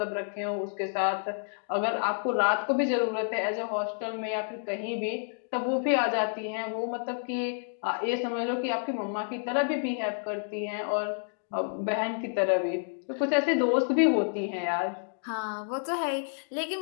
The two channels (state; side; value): silent; right; digital silence